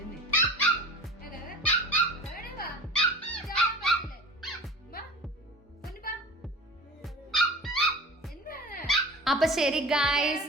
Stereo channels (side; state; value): both; normal; correlation 0.38